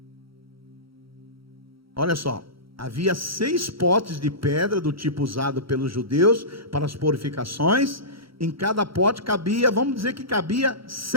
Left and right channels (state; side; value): late; left; 0.75 ms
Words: Olha só, havia 6 potes de pedra do tipo usado pelos judeus para as purificações. Em cada pote cabia, vamos dizer que cabia